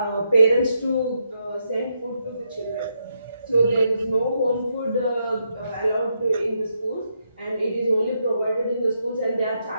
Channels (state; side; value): inverted; both; correlation -0.80